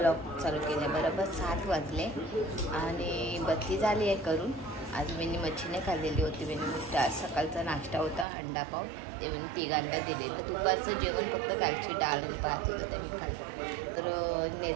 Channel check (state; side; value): drops out; left; at 8.2 s